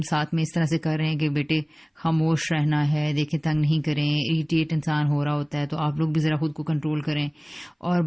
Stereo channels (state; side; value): identical; both; correlation 1.00